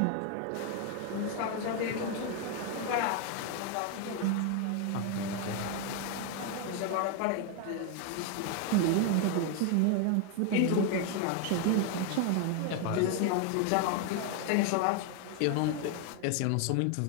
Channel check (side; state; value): both; different; correlation 0.01